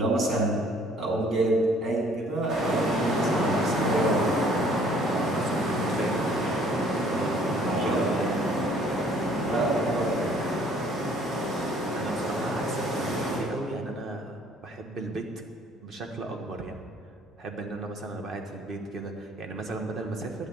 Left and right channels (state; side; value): normal; both; correlation 0.58